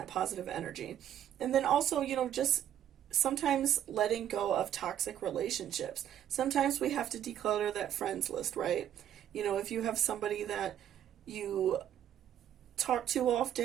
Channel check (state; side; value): quieter; left; 10.7 dB